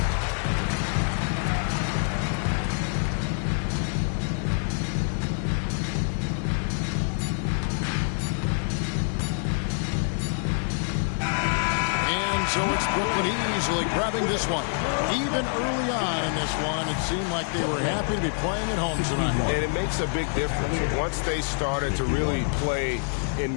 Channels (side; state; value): right; silent; 60 dB below the other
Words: So it's Brooklyn easily grabbing this one. Even early on in this one, it seemed like they were happy to be playing at home tonight. And it makes a big difference. Once they started to really play